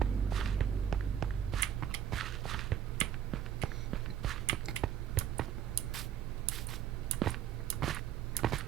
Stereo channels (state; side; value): quieter; left; 9.7 dB